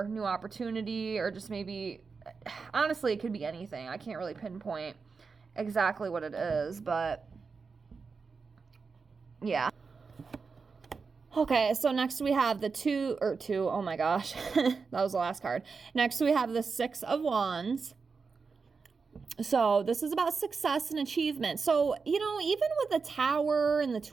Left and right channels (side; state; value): left; quieter; 4.9 dB